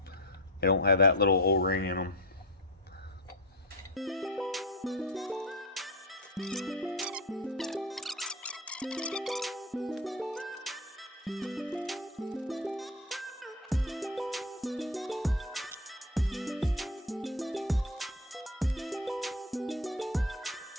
They don't have that little O-ring in them.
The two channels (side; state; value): both; normal; correlation 0.20